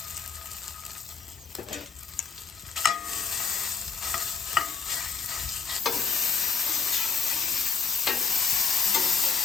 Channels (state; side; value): quieter; right; 5.8 dB